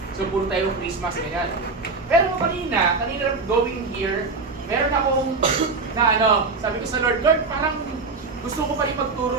So puro tayo Christmas ganyan. Pero kanina going here, meron akong sabi ko sa Lord, parang gusto ko pa rin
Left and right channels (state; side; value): quieter; left; 4.1 dB